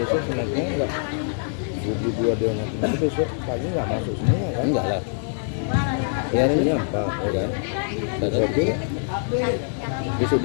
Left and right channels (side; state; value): right; silent; 63 dB below the other